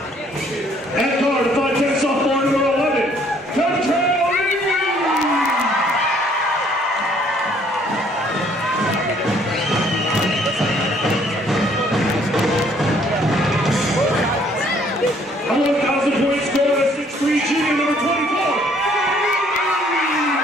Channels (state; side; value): normal; both; correlation 0.62